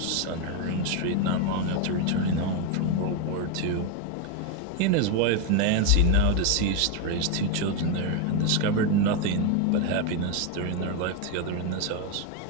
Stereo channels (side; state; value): both; different; correlation 0.02